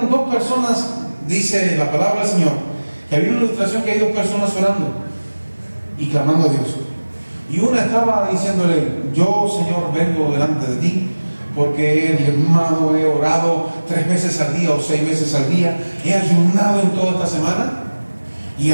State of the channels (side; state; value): both; inverted; correlation -1.00